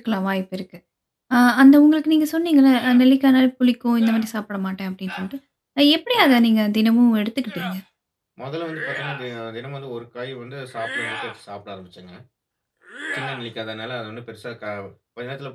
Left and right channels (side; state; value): both; identical; correlation 1.00